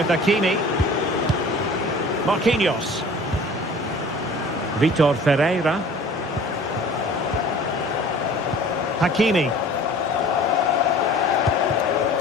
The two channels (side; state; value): both; normal; correlation 0.46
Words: Hakimi. Marquinhos. Vitor Ferreira. Hakimi.